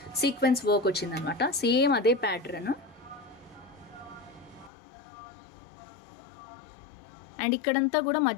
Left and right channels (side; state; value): right; drops out; at 4.7 s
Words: సీక్వెన్స్ వర్క్ వచ్చిందనమాట. సేమ్ అదే ప్యాటర్న్. అండ్ ఇక్కడంతా కూడా